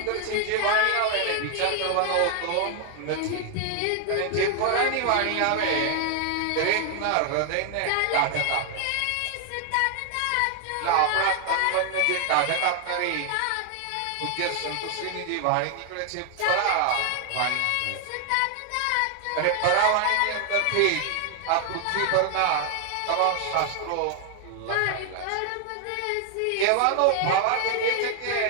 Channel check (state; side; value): different; both; correlation 0.00